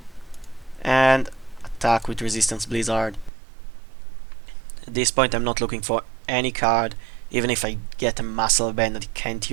and attack with Resistance Blizzard. At this point I'm not looking for any card, even if I get a Muscle Band, I can't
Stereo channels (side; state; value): left; drops out; at 3.3 s